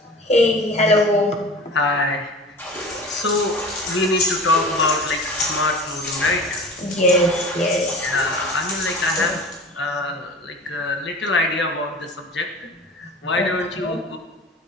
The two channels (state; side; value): normal; both; correlation 0.37